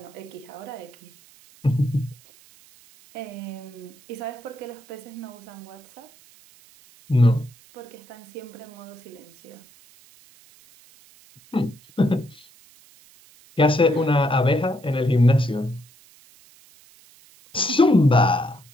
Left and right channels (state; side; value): noise; right; hiss, 26 dB below the sound